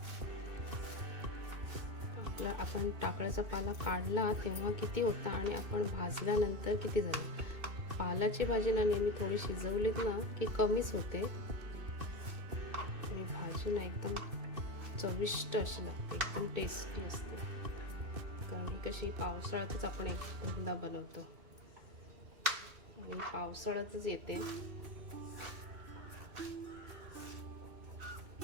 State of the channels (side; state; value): left; late; 2.6 ms